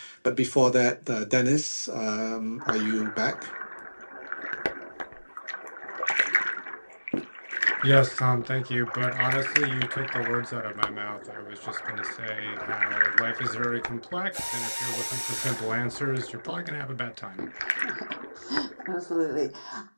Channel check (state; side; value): inverted; both; correlation -1.00